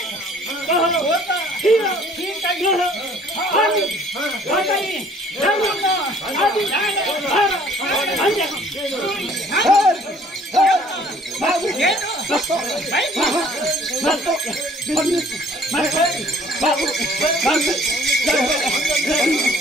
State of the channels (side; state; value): both; normal; correlation 0.56